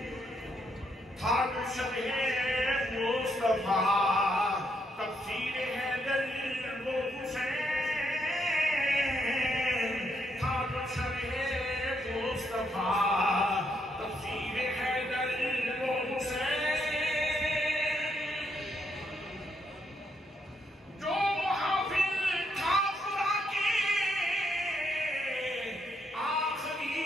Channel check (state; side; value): normal; both; correlation 0.76